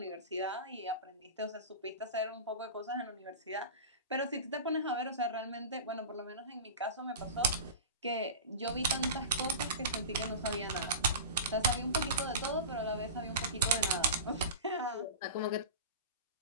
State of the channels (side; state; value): both; inverted; correlation -0.30